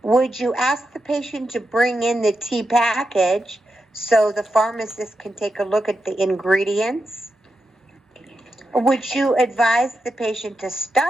Would you ask the patient to bring in the tea package so the pharmacist can take a look at the ingredients? Would you advise the patient to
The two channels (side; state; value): both; normal; correlation 0.87